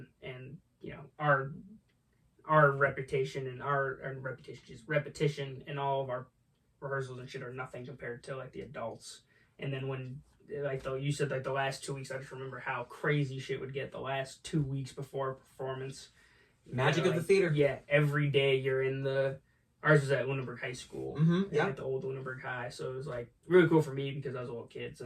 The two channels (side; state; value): both; identical; correlation 1.00